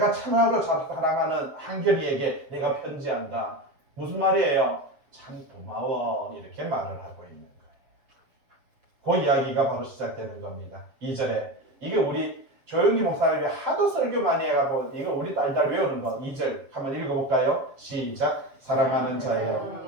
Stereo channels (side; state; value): left; late; 7.4 ms